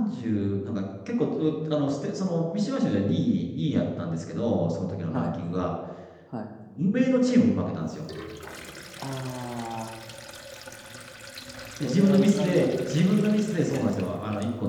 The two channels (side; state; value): both; identical; correlation 1.00